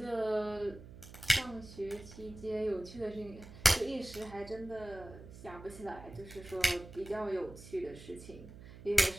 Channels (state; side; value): noise; right; hum, 16 dB below the sound